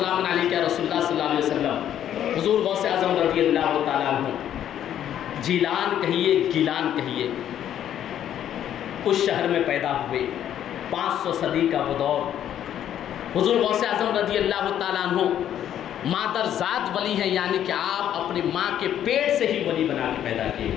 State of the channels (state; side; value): quieter; right; 10.6 dB